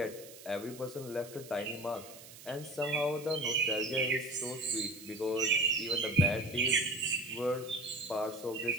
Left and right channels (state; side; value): noise; right; hiss, 17 dB below the sound